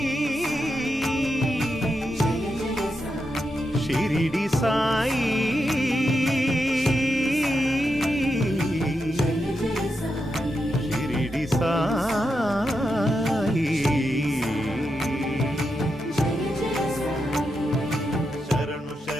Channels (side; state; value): both; normal; correlation 0.86